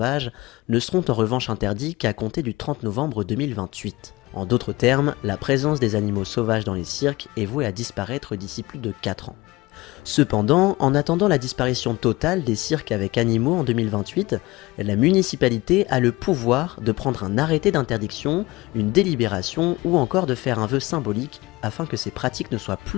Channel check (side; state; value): right; quieter; 20.8 dB